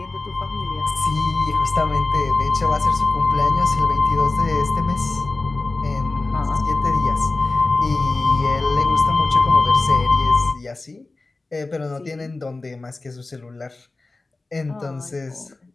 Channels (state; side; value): quieter; right; 3.3 dB